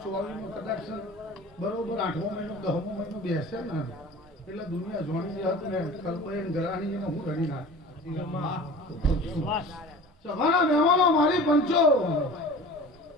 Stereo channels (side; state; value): both; normal; correlation 0.40